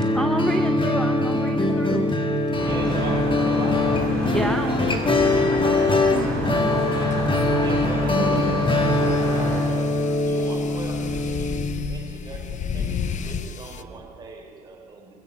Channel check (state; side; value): normal; both; correlation 0.62